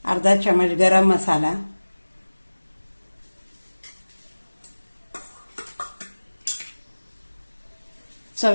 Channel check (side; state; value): both; inverted; correlation -1.00